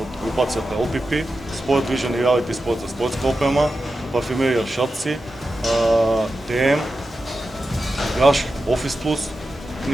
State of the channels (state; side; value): normal; both; correlation 0.91